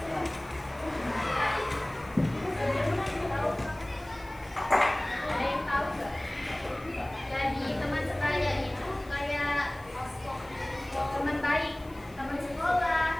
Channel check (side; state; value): left; noise; hiss, 26 dB below the sound